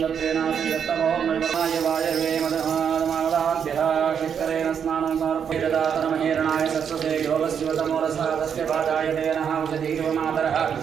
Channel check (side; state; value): left; quieter; 7.6 dB